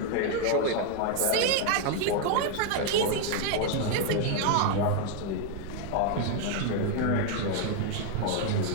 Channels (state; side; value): different; both; correlation 0.00